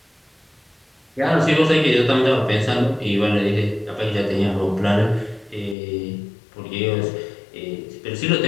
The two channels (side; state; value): right; drops out; at 5.8 s